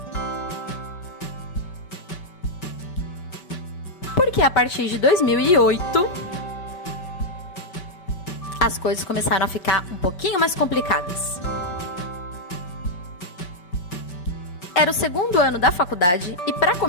Porque a partir de 2008, as coisas começaram a ficar um pouquinho mais complicadas. Era o 2º ano da faculdade e, para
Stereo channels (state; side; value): late; right; 5.2 ms